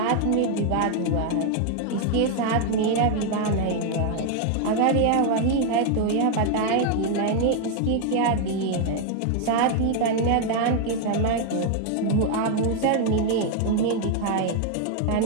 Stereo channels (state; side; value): different; both; correlation 0.00